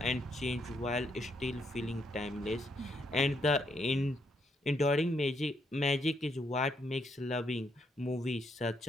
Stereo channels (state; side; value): normal; both; correlation 0.75